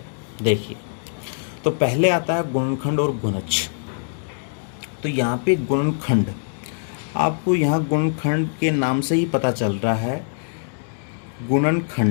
देखिए। तो पहले आता है गुणनखंड और गुणज। तो यहाँ पे गुणनखंड, आपको यहाँ गुणनखंड के नाम से ही पता चल रहा है।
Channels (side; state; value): right; silent; digital silence